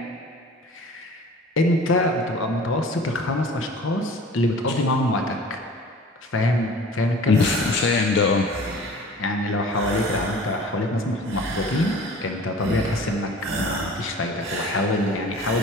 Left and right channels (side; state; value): both; normal; correlation 0.44